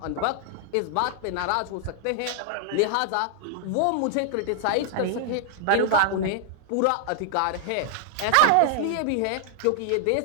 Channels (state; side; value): different; both; correlation 0.00